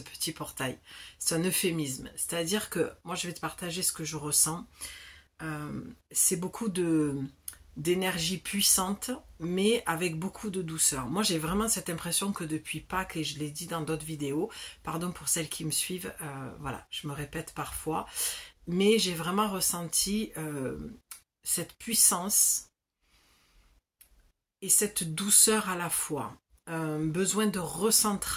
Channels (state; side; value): identical; both; correlation 1.00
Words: portail, c'est un euphémisme, c'est-à-dire que moi je vais te partager ce que je ressens, c'est beaucoup d'énergie puissante mais avec beaucoup de douceur. Moi j'ai vraiment cette impression que depuis Pâques, et je l'ai dit dans d'autres vidéos, pardon pour celles qui me suivent, voilà, je me répète parfois, mais j'ai vraiment ressenti cette puissance et cette douceur à la fois, besoin de